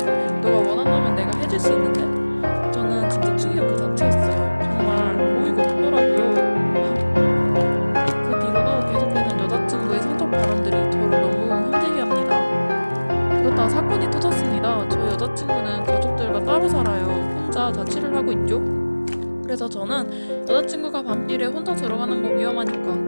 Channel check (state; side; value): inverted; both; correlation -1.00